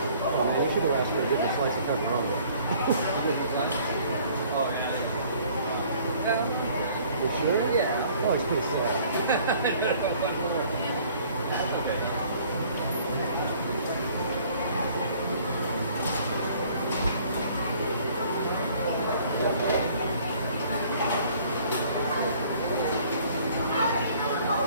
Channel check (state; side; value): inverted; both; correlation -0.56